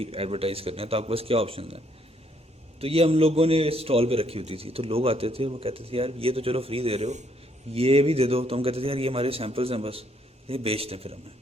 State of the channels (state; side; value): normal; both; correlation 0.70